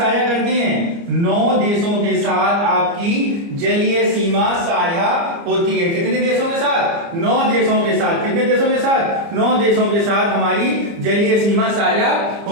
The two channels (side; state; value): left; late; 29 ms